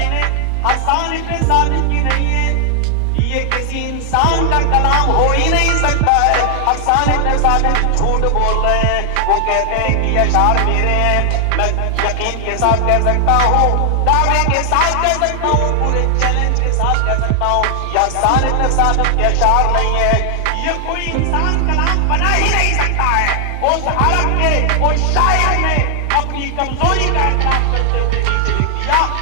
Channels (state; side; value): different; both; correlation 0.00